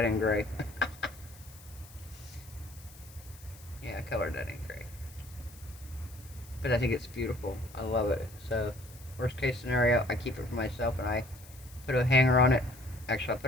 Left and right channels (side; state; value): left; noise; hiss, 21 dB below the sound